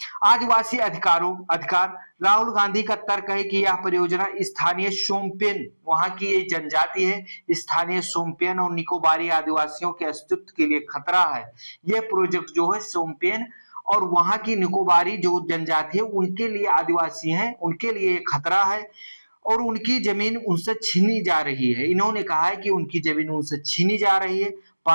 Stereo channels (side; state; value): both; inverted; correlation -1.00